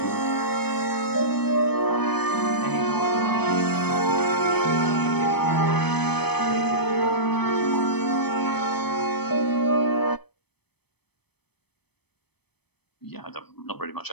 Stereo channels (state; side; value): late; right; 0.98 ms